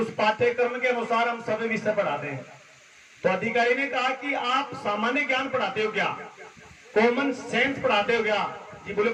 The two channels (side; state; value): both; identical; correlation 1.00